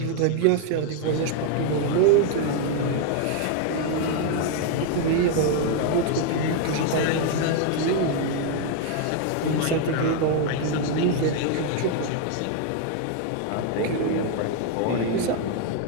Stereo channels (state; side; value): different; both; correlation 0.01